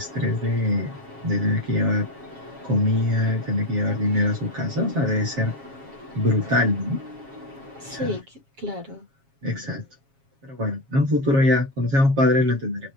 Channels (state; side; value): late; left; 7.4 ms